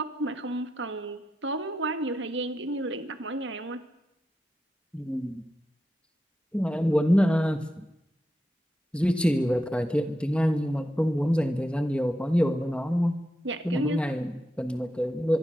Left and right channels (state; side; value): normal; both; correlation 0.87